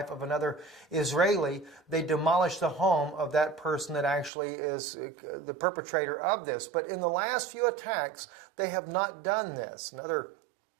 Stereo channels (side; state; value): left; drops out; at 4.3 s